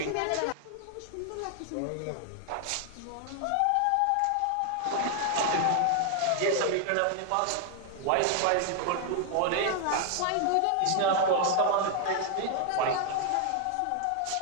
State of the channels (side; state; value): both; different; correlation 0.00